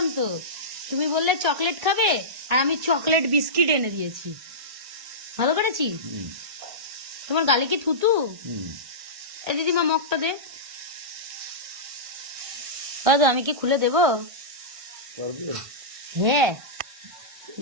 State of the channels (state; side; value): late; left; 1.6 ms